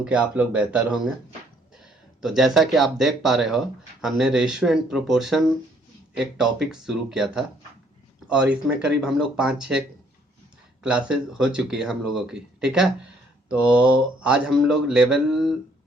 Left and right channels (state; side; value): normal; both; correlation 0.65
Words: कि आप लोग बेहतर होंगे। तो जैसा कि आप देख पा रहे हो, हमने रेशियो एंड प्रोपोर्शन एक टॉपिक शुरू किया था और इसमें करीब हम लोग 5-6 क्लासेस हो चुकी है हम लोगों की। ठीक है, तो आज हम लोग लेवल